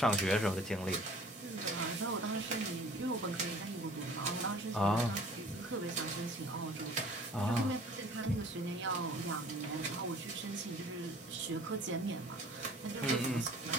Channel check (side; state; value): both; normal; correlation 0.49